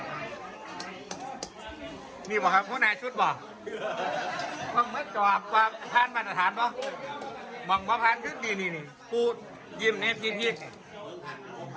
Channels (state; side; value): identical; both; correlation 1.00